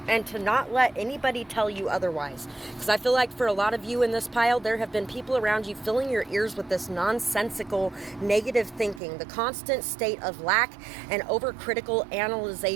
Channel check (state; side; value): drops out; left; at 9.0 s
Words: And to not let anybody tell you otherwise. Because I feel like for a lot of you in this pile, there have been people around you filling your ears with this nonsensical negative thinking, the constant state of lack and overcritical